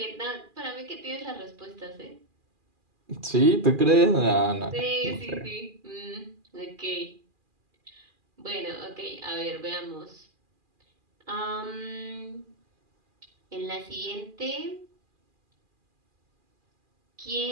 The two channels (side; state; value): left; late; 2.4 ms